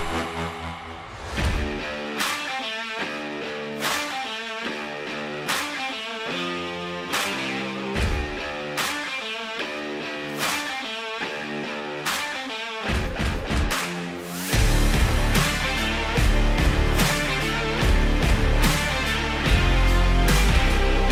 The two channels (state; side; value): identical; both; correlation 1.00